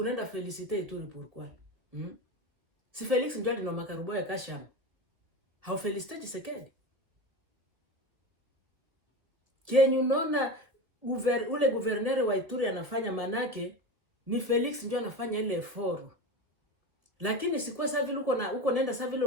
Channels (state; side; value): late; left; 2.1 ms